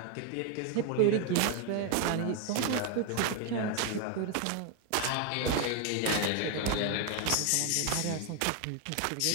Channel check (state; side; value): different; both; correlation 0.01